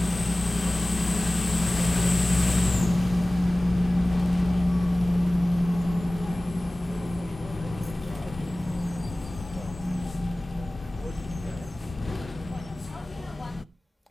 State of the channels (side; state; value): both; normal; correlation 0.98